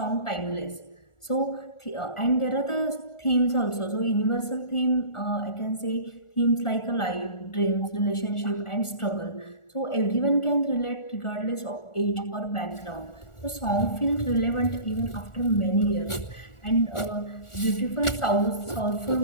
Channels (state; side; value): late; right; 1.4 ms